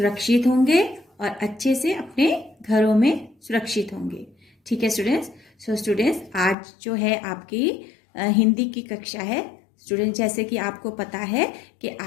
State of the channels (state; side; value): drops out; right; at 6.6 s